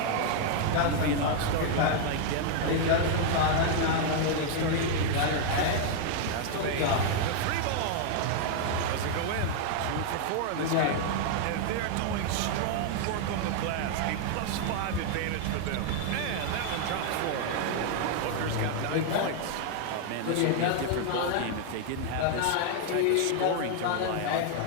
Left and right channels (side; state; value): both; different; correlation 0.00